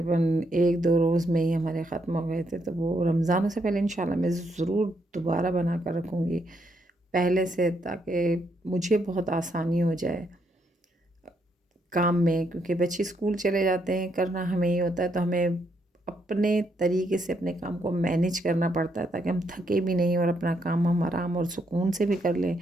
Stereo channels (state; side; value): normal; both; correlation 0.76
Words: 1-2 रोज़ में ही हमारे ख़त्म हो गए थे। तो वो रमज़ान से पहले इंशाल्लाह मैं ज़रूर दोबारा बना कर रखूँगी पहले से, ताकि मुझे बहुत आसानी हो जाए काम में, क्योंकि बच्चे स्कूल चले जाते हैं, करना हमें ही होता है। तो हमें अपने तरीके से अपने काम को मैनेज करना पड़ता है, ताकि हम थके भी नहीं और अपना काम हम आराम और सुकून से भी कर लें